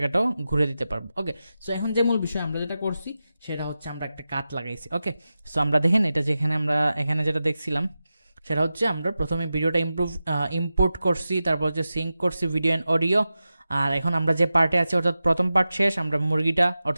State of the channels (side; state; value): both; inverted; correlation -0.93